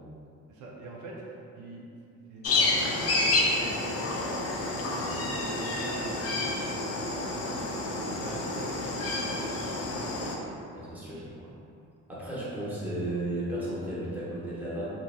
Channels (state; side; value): normal; both; correlation 0.13